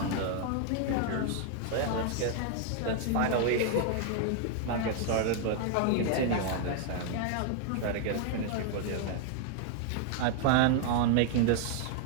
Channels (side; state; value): both; different; correlation 0.00